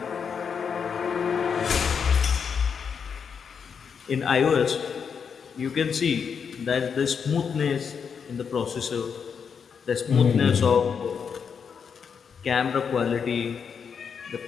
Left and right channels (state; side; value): quieter; right; 6.6 dB